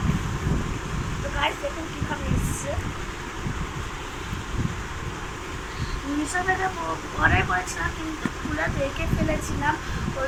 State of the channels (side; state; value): both; identical; correlation 1.00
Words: তো গাইস দেখুন কীভাবে এসছে। মিশো থেকে অর্ডার করেছিলাম কিন্তু খুলে দেখে ফেলেছিলাম, ওই